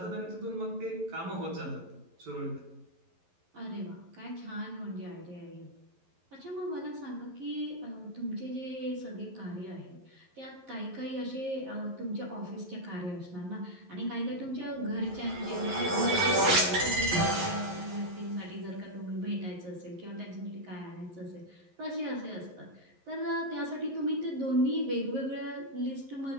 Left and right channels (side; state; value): left; late; 11 ms